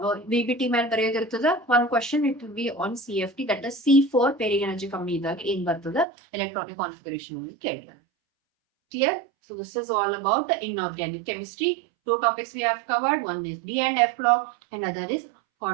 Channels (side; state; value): left; drops out; at 6.1 s